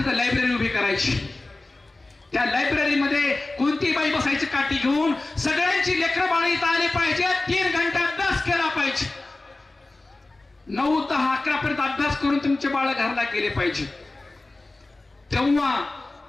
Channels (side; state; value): right; quieter; 3.0 dB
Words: लायब्ररी उभी करायची. त्या लायब्ररीमध्ये कोणती बाई बसायची काठी घेऊन, सगळ्यांची लेकरं बाळ इथं आली पाहिजे. 3 घंटे अभ्यास केला पाहिजे. 9, 10, 11 पर्यंत अभ्यास करून तुमचे बाळ घरला गेले पाहिजे. तेव्हा